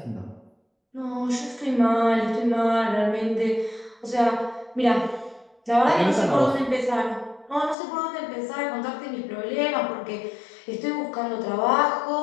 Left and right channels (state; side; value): drops out; right; at 7.8 s